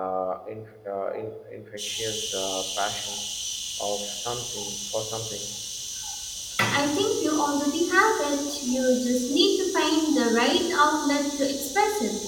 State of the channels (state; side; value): identical; both; correlation 1.00